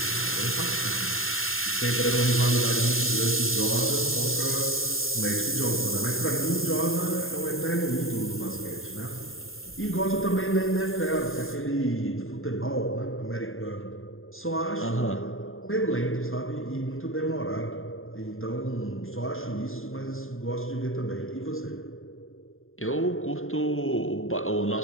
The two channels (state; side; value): late; right; 0.60 ms